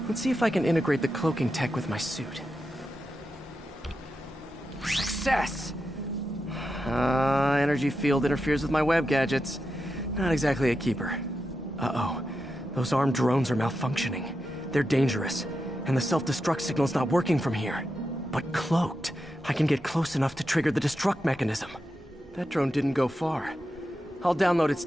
Let's see if I can integrate the cloaking tech with my suit. Success! Energy field interferes with my web gadgets. Not exactly a keeper. Uh-oh. Those armed drones are malfunctioning. They're dangerous. And the self-destruct signal's not working from here. But cloaked, I can get close enough to trigger the destruct mechanism. That drone didn't go far. I'll download its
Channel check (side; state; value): both; normal; correlation 0.88